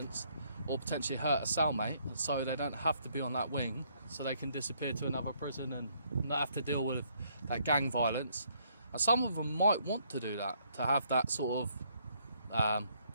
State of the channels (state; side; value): inverted; both; correlation -0.69